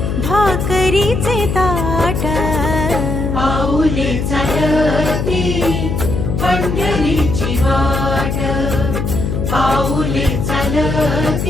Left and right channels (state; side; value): noise; left; hum, 1 dB below the sound